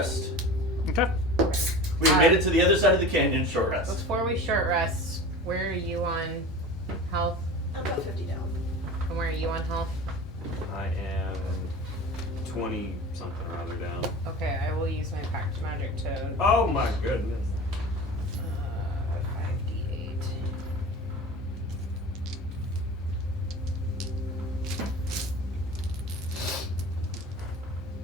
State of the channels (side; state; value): both; normal; correlation 0.35